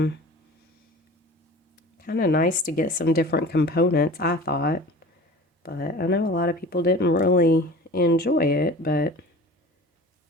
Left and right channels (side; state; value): both; normal; correlation 0.40